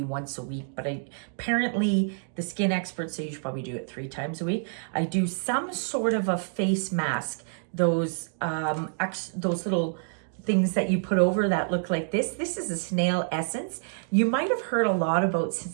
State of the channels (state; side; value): silent; left; digital silence